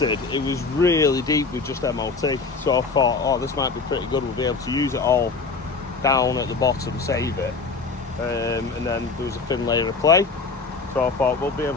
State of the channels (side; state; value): right; quieter; 4.3 dB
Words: it was really deep with just MOT, so I thought, oh, this might be pretty good, we'll be able to use it all down at the bottom, save it, and then there was a thin layer of clay, so I thought we'll be